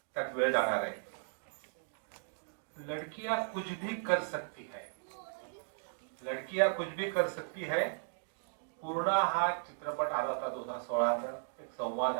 त्यात वेळ जाणार आहे. लड़कियां कुछ भी कर सकती है, लड़कियां कुछ भी कर सकती है. पूर्ण हा चित्रपट आला होता 2016चा. एक संवाद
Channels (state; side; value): silent; left; digital silence